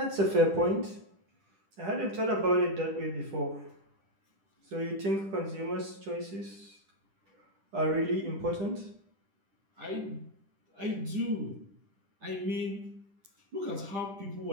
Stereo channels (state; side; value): late; left; 10 ms